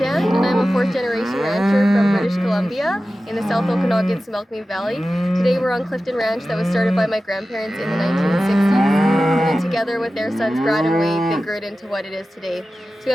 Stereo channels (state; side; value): normal; both; correlation 0.95